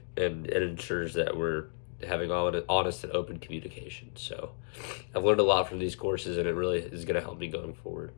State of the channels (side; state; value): right; silent; digital silence